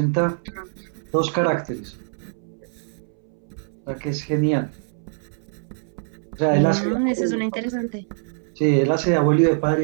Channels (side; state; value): left; silent; 63 dB below the other